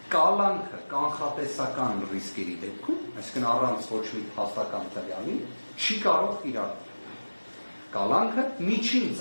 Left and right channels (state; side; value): inverted; both; correlation -1.00